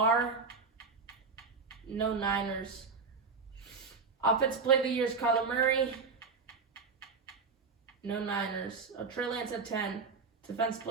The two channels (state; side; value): quieter; left; 4.8 dB